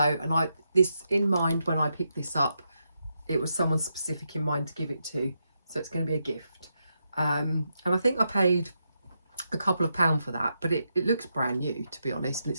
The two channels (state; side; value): inverted; both; correlation -0.84